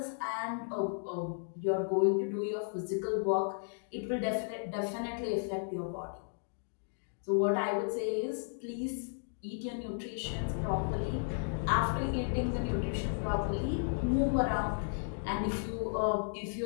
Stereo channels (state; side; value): silent; right; digital silence